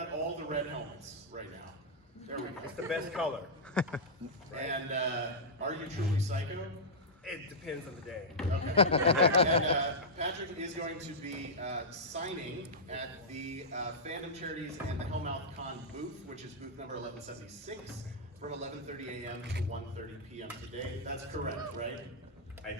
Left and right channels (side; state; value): both; normal; correlation -0.10